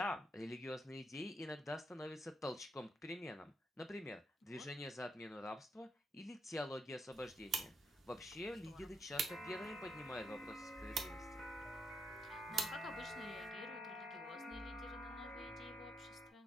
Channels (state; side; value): normal; both; correlation 0.80